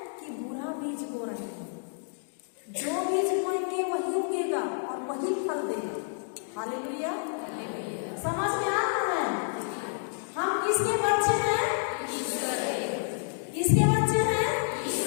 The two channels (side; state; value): right; silent; digital silence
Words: कि बुरा बीज बो रहे हैं? जो बीज बोएंगे वही उगेगा और वही फल देगा। हालेलुया। समझ में आ रहा है? हम किसके बच्चे हैं? किसके बच्चे हैं?